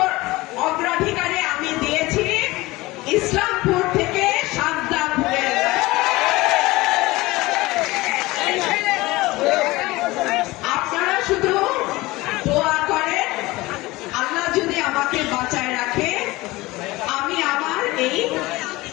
অগ্রাধিকারে আমি দিয়েছি ইসলামপুর থেকে সাজদাপুরের। আপনারা শুধু দোয়া করেন, আল্লাহ যদি আমাকে বাঁচায় রাখে, আমি আমার এই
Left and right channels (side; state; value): right; quieter; 20.3 dB